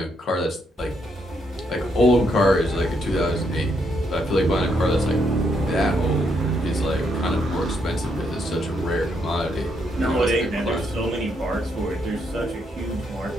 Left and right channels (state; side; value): normal; both; correlation 0.76